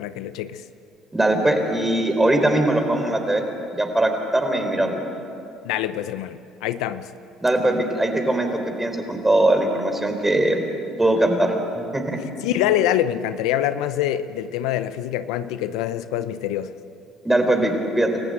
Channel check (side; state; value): both; normal; correlation 0.68